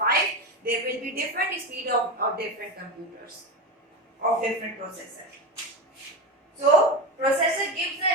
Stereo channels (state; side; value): normal; both; correlation 0.19